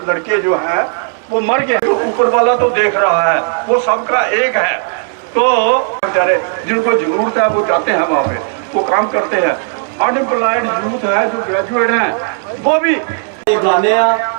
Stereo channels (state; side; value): silent; left; 58 dB below the other